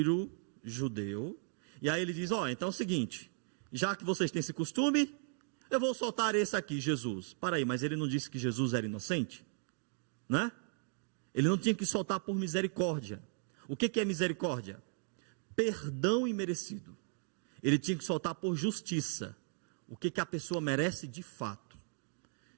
judeu. E aí ele diz, então é o seguinte, já que vocês têm esse costume, eu vou soltar esse aqui, Jesus. Para aí, mas ele não disse que Jesus era inocente? Né? Ele não tinha que soltar por misericórdia. O que é misericórdia? Perdão imerecido. Ele tinha que soltar por justiça. O que a pessoa merece de fato.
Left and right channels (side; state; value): left; silent; 53 dB below the other